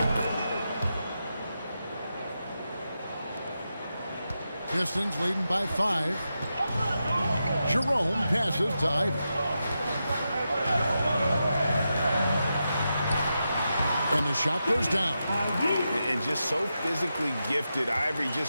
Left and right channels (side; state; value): both; inverted; correlation -0.88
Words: Pistons leading by 5. Jerome passes to Ivy. And the shot goes down. And just so physically gifted, Ivory